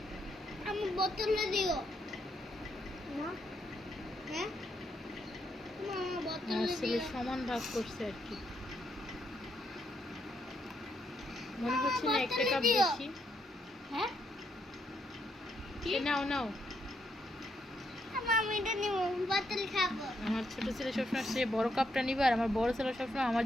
আমি বোতলে দিও না, হ্যাঁ মামা বোতলে আমার ছেলে দিও। সমান ভাগ করছে আর কি, মনে হচ্ছে না একটা কাপ বেশি। হ্যাঁ নাও নাও। আমি এটা নিব, বোতল খাবো। আমার ছোট ছেলে সবসময় সে বড় কাপটা নিবে, আর আমার বড় ছেলে সবসময় আমার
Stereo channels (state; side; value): normal; both; correlation 0.77